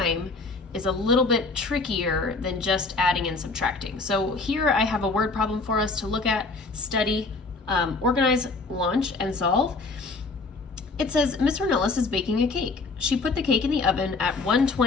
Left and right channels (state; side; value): quieter; right; 3.8 dB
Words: is a little bit trickier than just adding and subtracting. So here I have a word problem for us to look at, study, organize, launch, and solve. It says, Miss Ornelas is baking a cake. She put the cake in the oven at